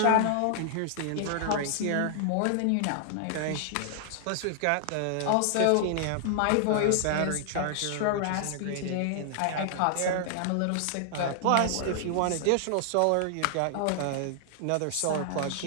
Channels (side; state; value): both; different; correlation -0.01